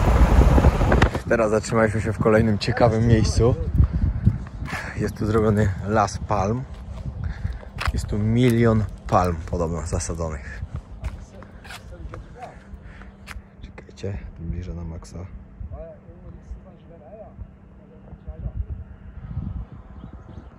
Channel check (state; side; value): identical; both; correlation 1.00